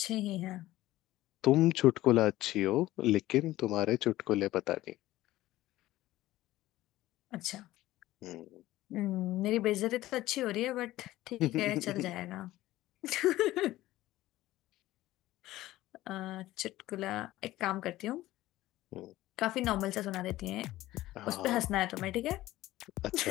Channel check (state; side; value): quieter; right; 16.1 dB